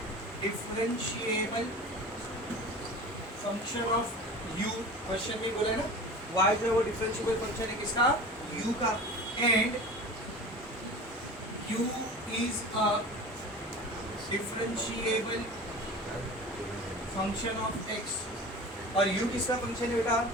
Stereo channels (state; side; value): normal; both; correlation 0.36